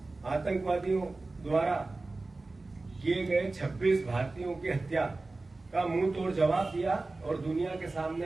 आतंकवादियों द्वारा किए गए 26 भारतीयों की हत्या का मुंह तोड़ जवाब दिया और दुनिया के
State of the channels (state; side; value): quieter; left; 3.3 dB